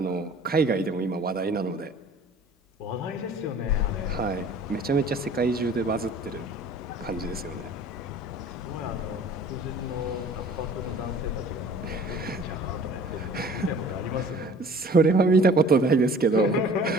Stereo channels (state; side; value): normal; both; correlation 0.48